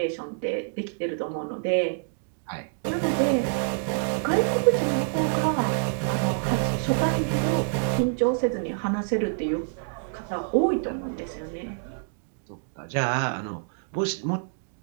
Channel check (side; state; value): left; silent; digital silence